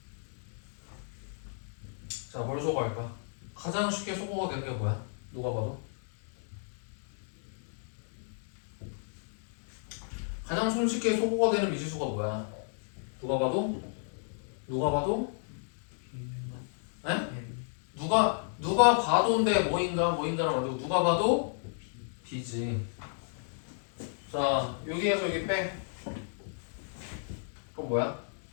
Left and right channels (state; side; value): silent; right; digital silence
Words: 자 뭘 소거할까? 가장 쉽게 소거가 되는 게 뭐야? 누가 봐도? 가장 손쉽게 소거가 되는 미지수가 뭐야? 누가 봐도? 에? 누가 봐도인데 뭐인가는 아니고 누가 봐도 b지. 자 여기에서 여기 빼. 그럼 뭐야?